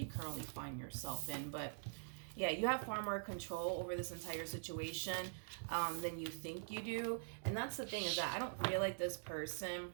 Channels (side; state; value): left; silent; digital silence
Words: currently find yourself in. But yeah, you have far more control over this entire situation than you think you do. And that's the thing, is that I don't feel like this person